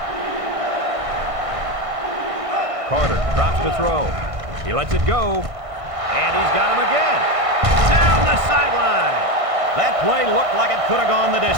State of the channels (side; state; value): left; late; 1.6 ms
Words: Carter drops to throw. He lets it go. And he's got him again. Down the sideline. That play looked like it could have gone the